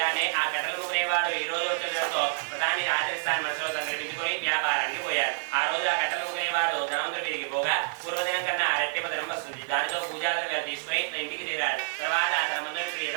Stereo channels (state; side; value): silent; left; digital silence